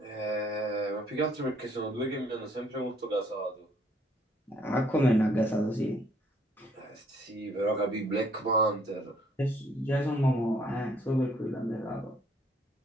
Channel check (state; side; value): normal; both; correlation 0.64